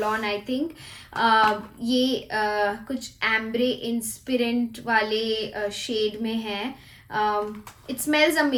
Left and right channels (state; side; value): identical; both; correlation 1.00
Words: on, I think. ये कुछ एम्ब्रे इंस्पिरेंट वाले शेड में है. इट स्मेल्स